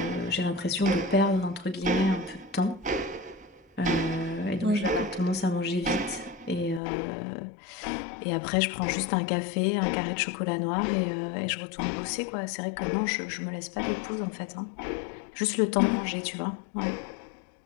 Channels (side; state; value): right; drops out; at 6.8 s